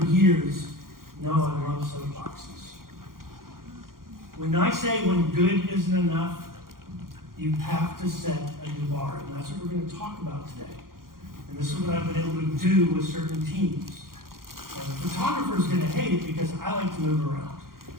years, know I love soapboxes. When I say when good isn't enough, you have to set a new bar, and that's what we're going to talk about today. And this is what I've been able to do with certain teams. And the photographer's going to hate it because I like to move around.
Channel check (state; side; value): late; left; 0.92 ms